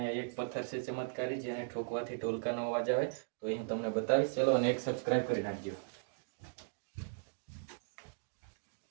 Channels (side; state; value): left; silent; digital silence